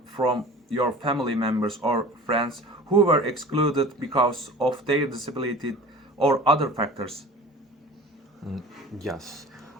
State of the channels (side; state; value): both; normal; correlation 0.41